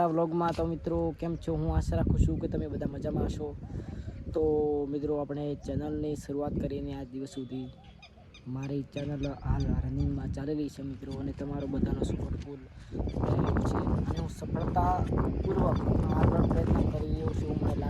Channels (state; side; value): identical; both; correlation 1.00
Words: વ્લોગમાં. તો મિત્રો કેમ છો? હું આશા રાખું છું કે તમે બધા મજામાં હશો. તો મિત્રો આપણે ચેનલની શરૂઆત કરીને આજ દિવસ સુધી મારી ચેનલ હાલ રનિંગમાં ચાલી રહી છે મિત્રો, અને તમારો બધાનો સપોર્ટ ફૂલ છે અને હું સફળતાપૂર્વક આગળ પ્રયત્ન કરી રહ્યો છું. મને